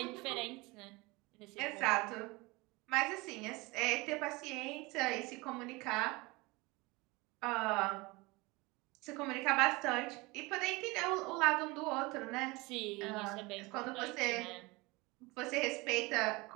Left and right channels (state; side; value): quieter; left; 24.0 dB